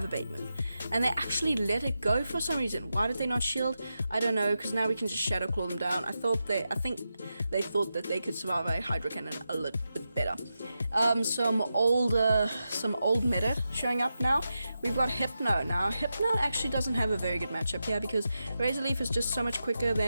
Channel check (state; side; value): inverted; both; correlation -0.89